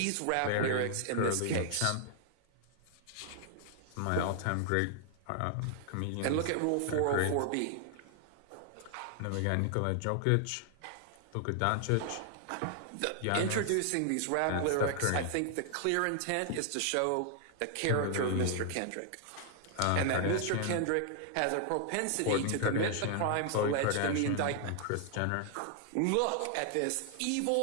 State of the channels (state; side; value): different; both; correlation 0.00